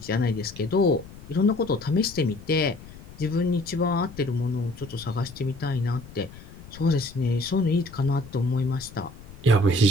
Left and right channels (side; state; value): left; noise; rumble, 18 dB below the sound